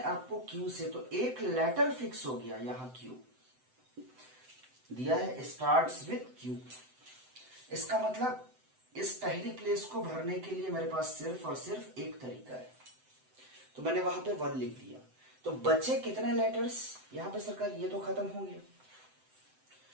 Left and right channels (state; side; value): late; left; 7.8 ms